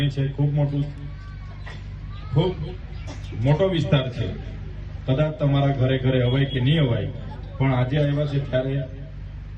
છે, ખૂબ મોટો વિસ્તાર છે. કદાચ તમારા ઘરે ઘરે અવાય કે નહીં અવાય, પણ આજે આવ્યા છે ત્યારે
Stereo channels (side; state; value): both; identical; correlation 1.00